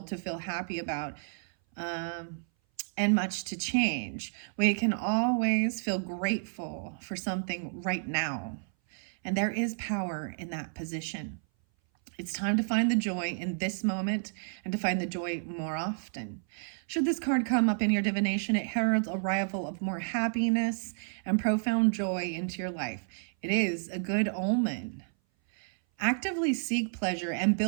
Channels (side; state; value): left; silent; 57 dB below the other